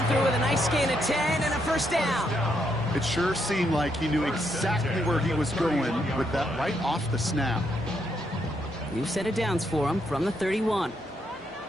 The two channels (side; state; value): both; normal; correlation 0.77